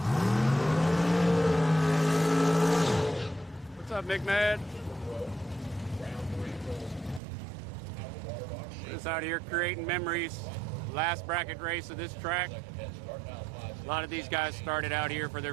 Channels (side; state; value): left; drops out; at 7.2 s